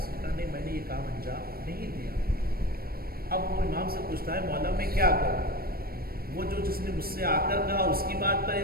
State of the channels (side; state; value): left; late; 0.44 ms